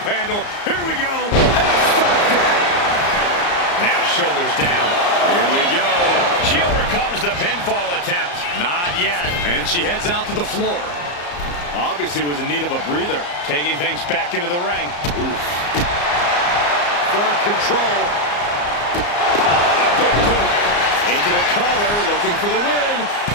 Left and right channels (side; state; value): right; late; 34 ms